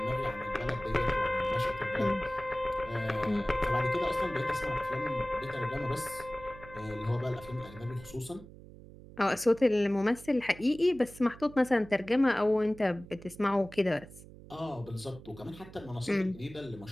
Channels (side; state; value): right; noise; hum, 18 dB below the sound